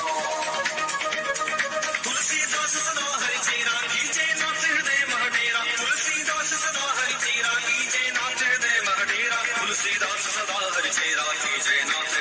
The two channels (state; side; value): identical; both; correlation 1.00